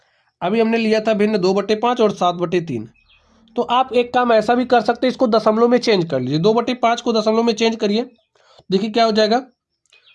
अभी हमने लिया था भिन्न 2/5 और 7/3, तो आप एक काम ऐसा भी कर सकते हैं, इसको दशमलव में चेंज कर लीजिए। 2/5 को दशमलव में चेंज करिए, देखिए क्या हो जाएगा।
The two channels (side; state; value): both; identical; correlation 1.00